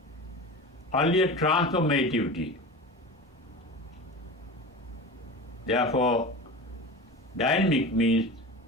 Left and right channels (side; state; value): both; normal; correlation 0.31